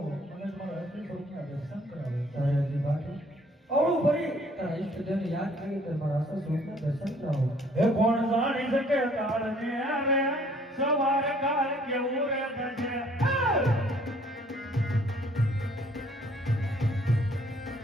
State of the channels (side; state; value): both; normal; correlation 0.59